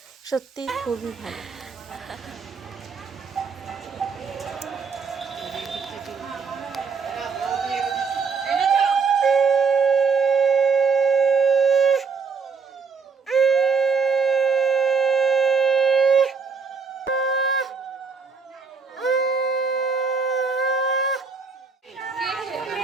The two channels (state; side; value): quieter; left; 5.2 dB